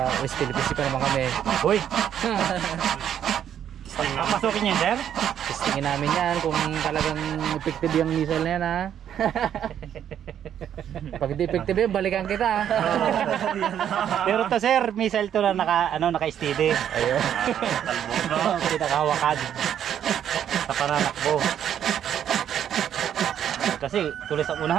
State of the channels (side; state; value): left; quieter; 9.7 dB